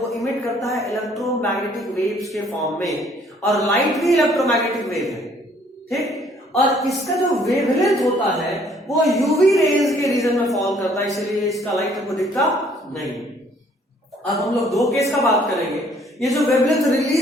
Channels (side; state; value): both; normal; correlation 0.61